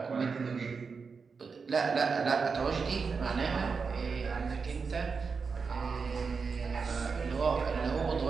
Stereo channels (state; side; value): quieter; left; 5.2 dB